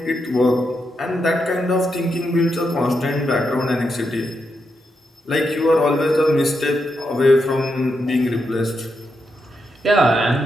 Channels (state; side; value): normal; both; correlation 0.83